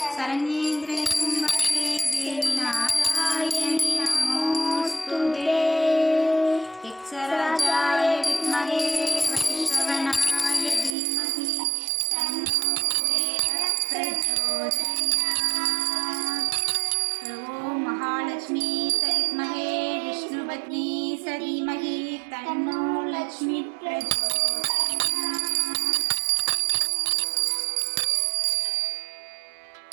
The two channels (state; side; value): drops out; left; at 10.9 s